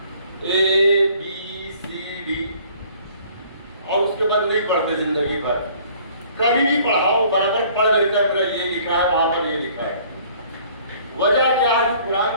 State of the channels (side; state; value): both; inverted; correlation -0.55